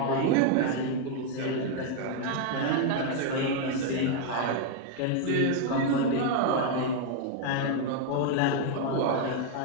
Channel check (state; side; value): different; both; correlation 0.00